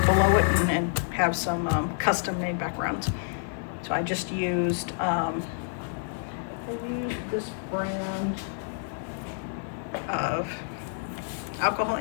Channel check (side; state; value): right; silent; digital silence